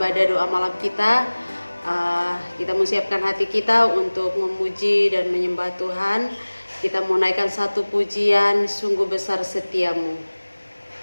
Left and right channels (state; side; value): inverted; both; correlation -1.00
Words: doa malam kita. Kita menyiapkan hati kita untuk memuji dan menyembah Tuhan. Kita mau naikkan satu pujian, sungguh besar setiamu.